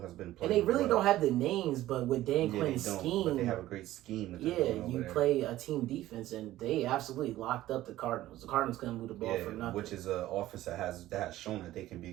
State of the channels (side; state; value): left; quieter; 15.1 dB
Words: has been and playing they really well. don't have the names, but with Dan Yeah, Quinn's they don't, scheme, but they have a great scheme. That they're yeah, doing over you there. play a team defense, and they absolutely locked up the Cardinals. The Cardinals couldn't move the ball for nothing. which is an offense that has shown that they can be